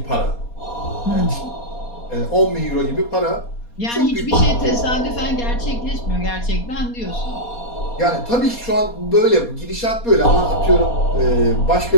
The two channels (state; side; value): late; right; 4.2 ms